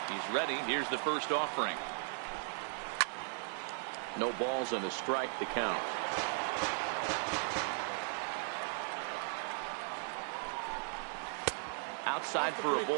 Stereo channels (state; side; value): silent; left; 53 dB below the other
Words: He's ready. Here's the first offering. No balls and a strike to count. Outside for a